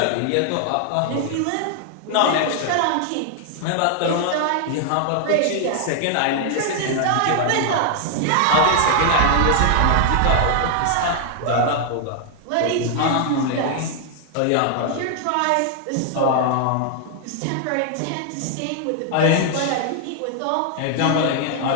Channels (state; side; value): different; both; correlation 0.00